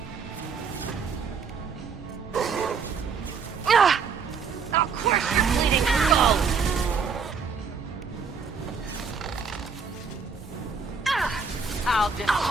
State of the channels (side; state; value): left; quieter; 5.5 dB